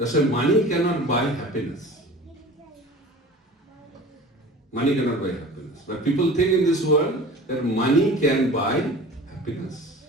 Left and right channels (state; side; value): normal; both; correlation 0.41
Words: why money cannot buy happiness. Money cannot buy happiness. But people think in this world that money can buy happiness.